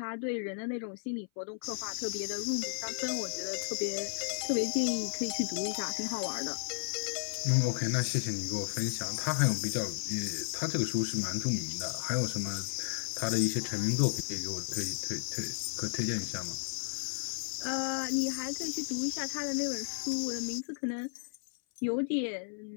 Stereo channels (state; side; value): silent; right; 55 dB below the other